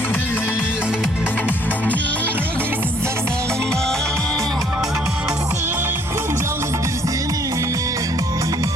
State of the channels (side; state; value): both; normal; correlation 0.63